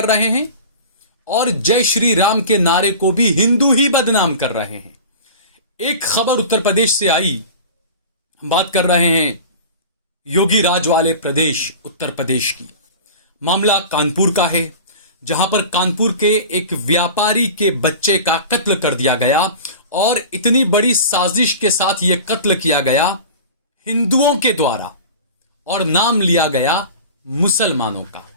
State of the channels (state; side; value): inverted; both; correlation -0.36